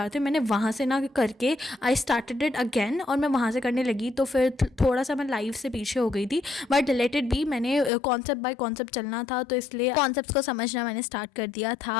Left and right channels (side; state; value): right; drops out; at 7.9 s